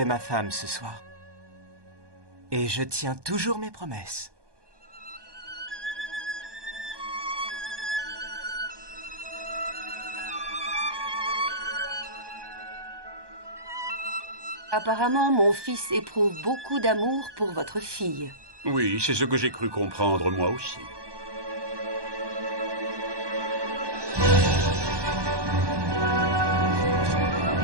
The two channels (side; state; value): left; late; 1.2 ms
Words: ma femme ce soir. Et je tiens toujours mes promesses. Apparemment, mon fils éprouve beaucoup d'amour pour votre fille. Oui, c'est ce que j'ai cru comprendre moi aussi.